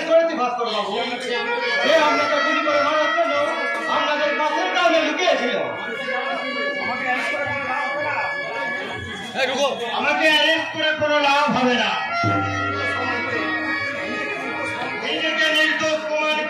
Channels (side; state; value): both; identical; correlation 1.00